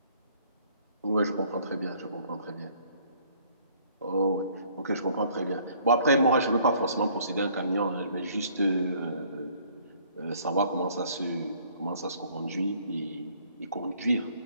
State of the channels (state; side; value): inverted; both; correlation -0.59